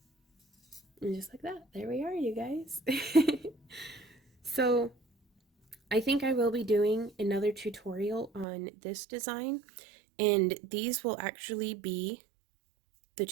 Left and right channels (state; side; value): drops out; left; at 8.5 s